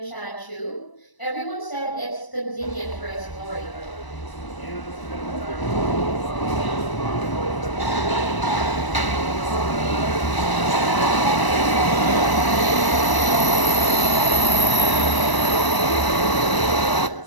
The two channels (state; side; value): late; right; 1.0 ms